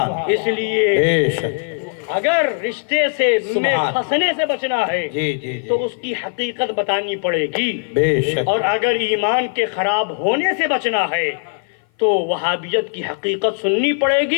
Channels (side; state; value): right; silent; 56 dB below the other